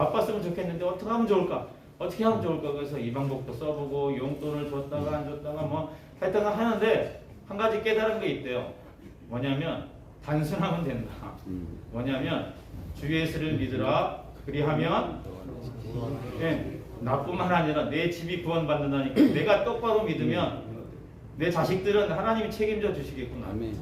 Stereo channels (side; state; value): both; identical; correlation 1.00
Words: 좋겠는데 어떻게 하면 좋을까? 어떻게 하면 좋을까? 그래서 이 방법도 써보고 용돈을 줬다가 안 줬다가 뭐 하여튼 하는데 한 가지 깨달은 게 있대요. 뭐냐면 단순하면 된다. 뭐냐면 주 예수를 믿으라. 그리하면 나뿐만 아니라 내 집이 구원받는다니까. 내가 똑바로 믿으면 내 자식들은 하나님이 책임져 주시겠구나.